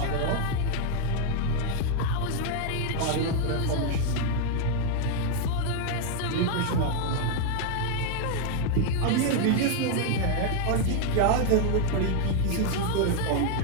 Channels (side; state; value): both; different; correlation 0.00